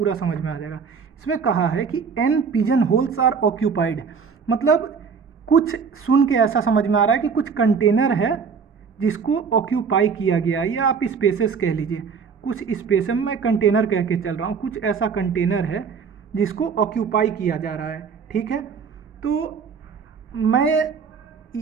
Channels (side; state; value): left; quieter; 6.0 dB